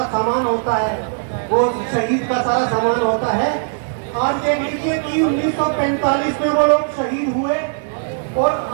सामान होता है, वो शहीद का सारा सामान होता है। आज देख लीजिए कि 1945 में वो लोग शहीद हुए और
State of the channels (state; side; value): silent; left; digital silence